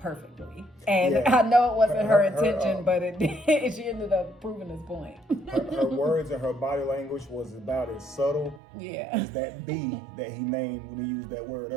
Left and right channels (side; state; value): left; drops out; at 8.6 s